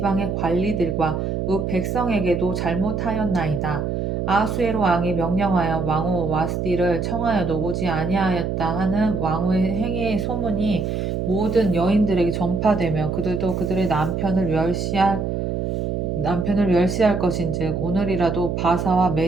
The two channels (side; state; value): right; noise; hum, 2 dB below the sound